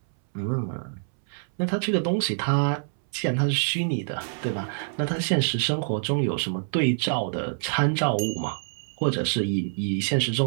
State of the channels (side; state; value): left; silent; 61 dB below the other